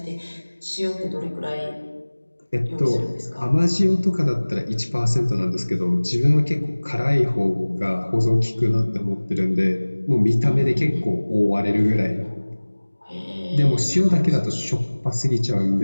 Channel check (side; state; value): both; inverted; correlation -1.00